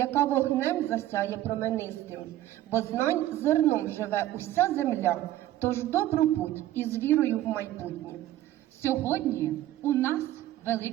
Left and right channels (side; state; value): left; quieter; 14.0 dB